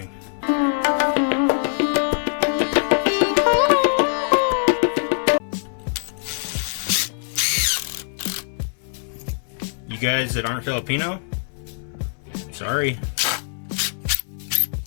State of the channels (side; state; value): right; silent; 60 dB below the other